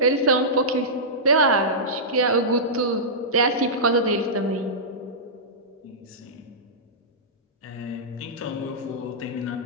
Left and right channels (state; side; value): normal; both; correlation -0.15